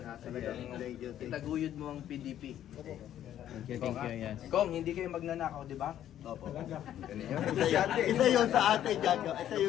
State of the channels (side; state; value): right; quieter; 11.3 dB